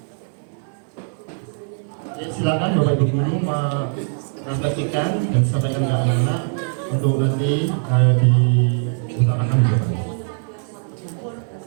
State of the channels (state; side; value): silent; left; 56 dB below the other